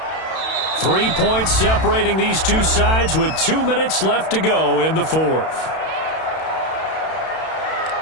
3 points separating these two sides with 2 minutes left to go in the fourth.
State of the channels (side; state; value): right; late; 32 ms